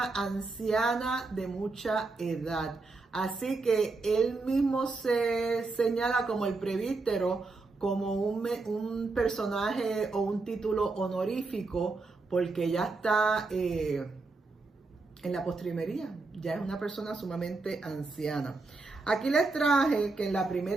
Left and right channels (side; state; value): left; quieter; 3.7 dB